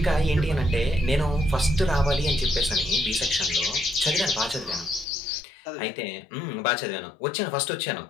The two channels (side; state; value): right; drops out; at 5.1 s